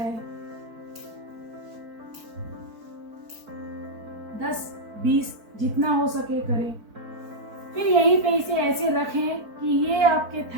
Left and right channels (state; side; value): late; left; 4.5 ms